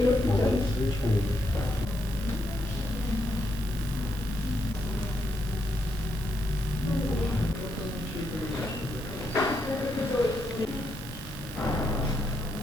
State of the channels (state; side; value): normal; both; correlation 0.80